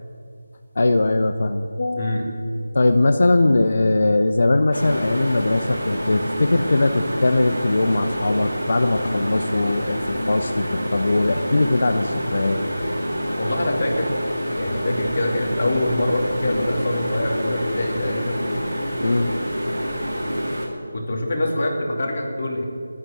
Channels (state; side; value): inverted; both; correlation -0.96